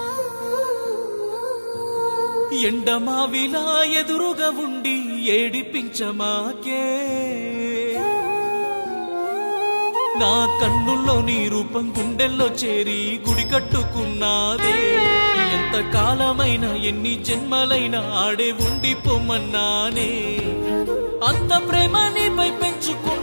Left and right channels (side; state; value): both; inverted; correlation -1.00